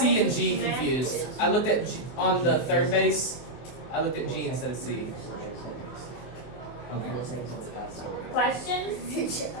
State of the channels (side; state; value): right; late; 24 ms